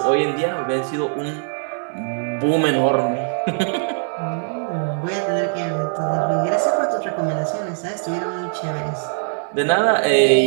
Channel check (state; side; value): silent; left; 65 dB below the other